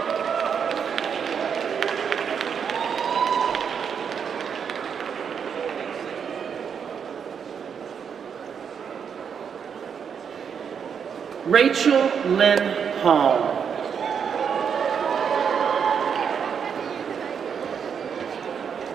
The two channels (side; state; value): left; quieter; 7.1 dB